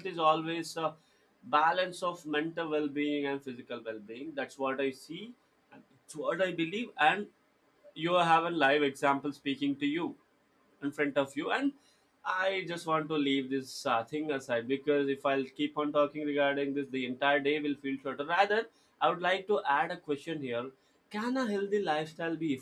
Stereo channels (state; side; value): identical; both; correlation 1.00